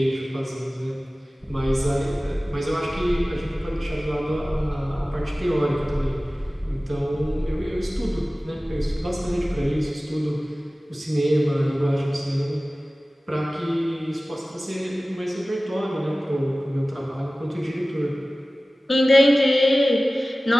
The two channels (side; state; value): both; normal; correlation 0.97